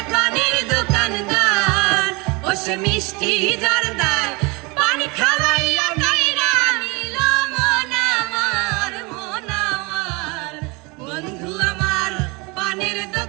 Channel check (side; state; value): left; quieter; 27.4 dB